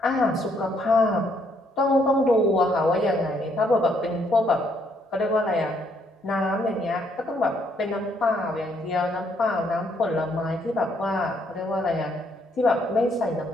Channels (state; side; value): normal; both; correlation 0.71